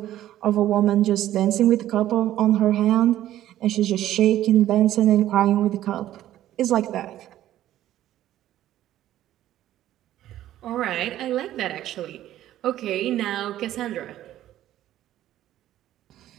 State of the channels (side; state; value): left; quieter; 13.1 dB